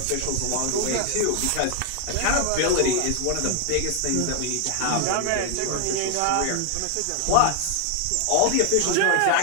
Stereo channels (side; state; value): both; different; correlation 0.00